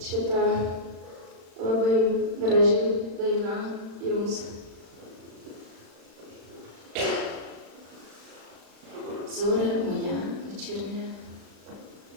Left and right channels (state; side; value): late; left; 36 ms